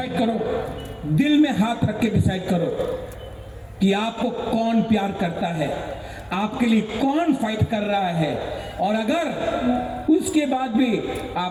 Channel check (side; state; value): both; identical; correlation 1.00